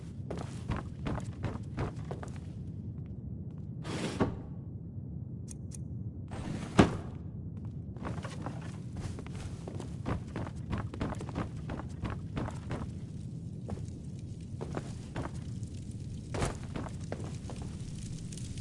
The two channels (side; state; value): both; identical; correlation 1.00